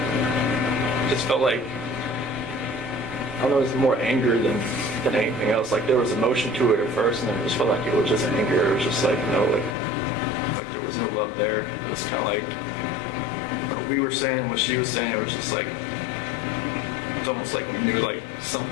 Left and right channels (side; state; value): right; drops out; at 9.8 s